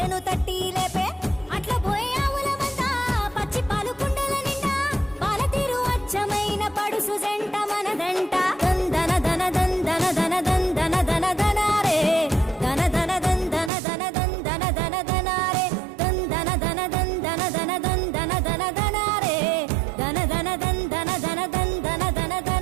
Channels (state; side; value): drops out; left; at 13.7 s